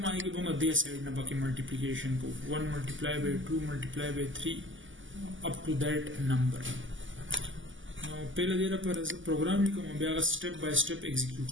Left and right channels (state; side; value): late; left; 0.56 ms